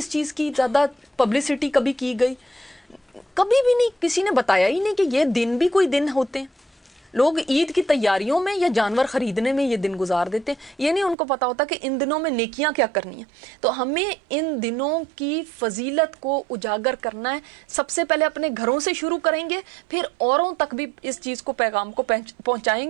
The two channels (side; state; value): left; drops out; at 11.2 s